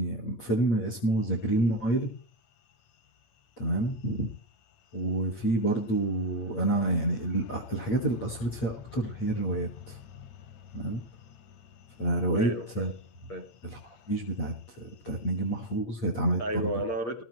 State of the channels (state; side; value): late; right; 8.9 ms